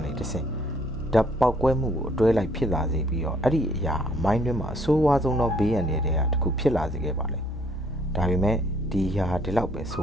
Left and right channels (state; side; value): normal; both; correlation 0.63